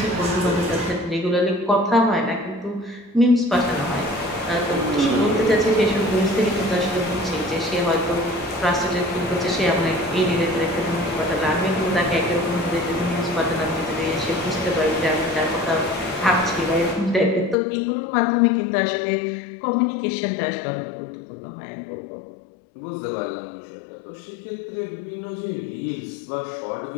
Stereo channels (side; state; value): right; drops out; at 17.6 s